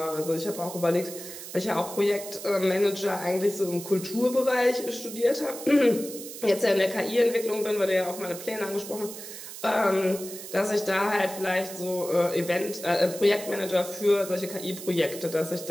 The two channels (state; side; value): noise; right; hiss, 11 dB below the sound